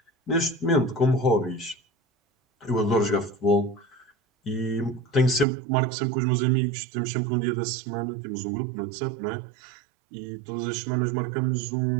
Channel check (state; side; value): drops out; left; at 5.5 s